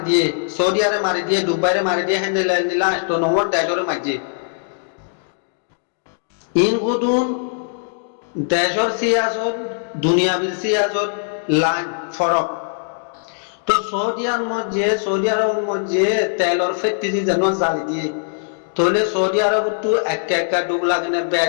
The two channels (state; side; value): silent; right; digital silence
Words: দিয়ে সৌদি আরবে মারি দিয়ে দুবাইরে মারি দিয়ে হ্যান্ডেল দিলা তো নম্বর দেশরে মারছে ইন গুদুন দেশর সিয়াসত দুনিয়াবির সিয়াসত লাইন ফরক তো সৌদি আরবের মধ্যে তেলর ফেটতি যেন জ্বালি দিয়ে তাহলে সৌদি আরব তো একটা ডুব লাগে না